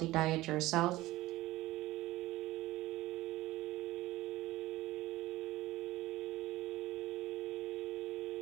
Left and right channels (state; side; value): quieter; left; 17.7 dB